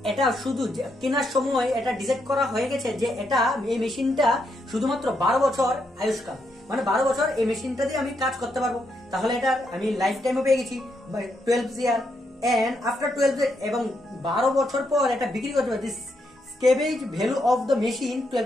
এটা শুধু কেনার সময় এটা ডিসাইড করা হয়ে গেছে যে এটা এই মেশিনটা শুধুমাত্র 12 বছর আয়ুষ্কাল, মানে 12 বছর এই মেশিনটা দিয়ে আমি কাজ করতে পারবো। তাহলে এটা আমি লাইফ টাইমও পেয়ে গেছি 12 ইয়ার, এন্ড আফটার 12 এবং 12 বছর পর এটা বিক্রি করতে পারবো। This salvage value of the machine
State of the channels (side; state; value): both; normal; correlation 0.79